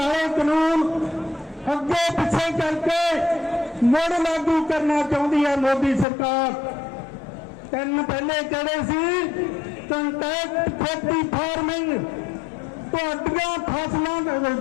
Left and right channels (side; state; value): right; drops out; at 6.1 s